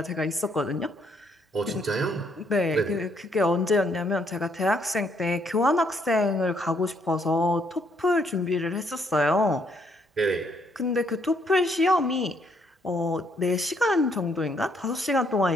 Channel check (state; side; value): normal; both; correlation 0.70